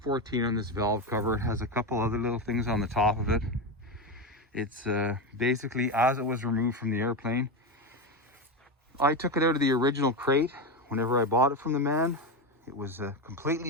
on this valve cover. It has a couple other little things on the top of it. It's basically as it was removed from the airplane. I took it out of the original crate whenever I bought it from the man. It was a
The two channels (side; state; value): both; normal; correlation 0.15